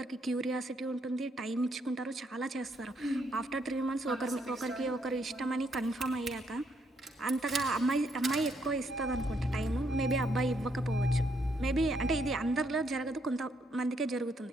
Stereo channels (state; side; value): normal; both; correlation 0.74